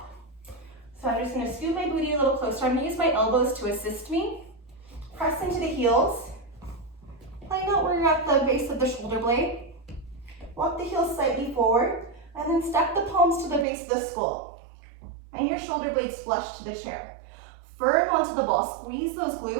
So I'm just gonna scoot my booty a little closer. I'm gonna use my elbows to assist me. Press into the heels. Find out where you're at the base of the shoulder blade. Walk the heels slightly forward, and then stack the palms to the base of the skull. And your shoulder blades flush to the chair. Firm onto the ball, squeeze those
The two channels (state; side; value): drops out; left; at 13.7 s